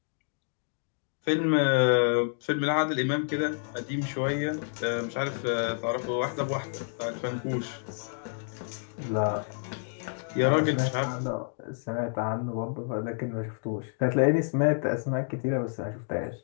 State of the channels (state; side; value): silent; right; digital silence